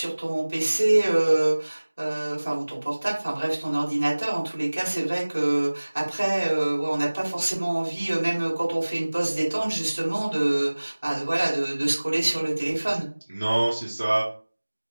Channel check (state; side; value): inverted; both; correlation -1.00